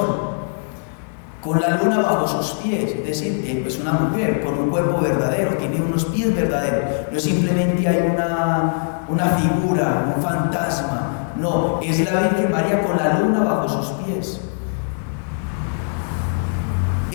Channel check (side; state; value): right; silent; digital silence